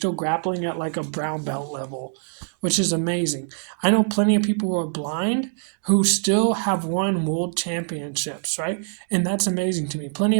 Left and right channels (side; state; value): left; silent; digital silence